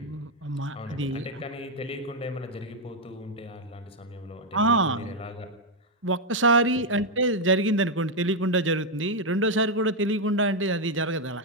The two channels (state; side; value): normal; both; correlation 0.02